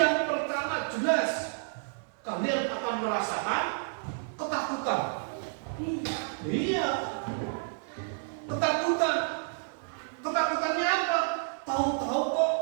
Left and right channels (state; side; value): silent; left; 58 dB below the other